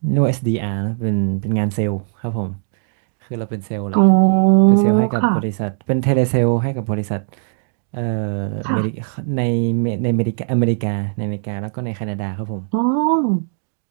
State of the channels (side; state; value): left; silent; digital silence